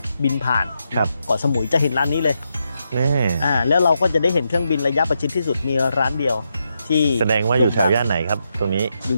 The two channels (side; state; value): both; inverted; correlation -0.83